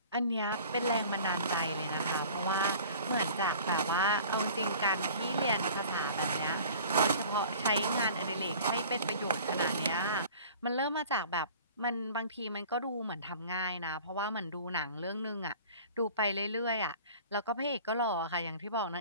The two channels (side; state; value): both; inverted; correlation -0.45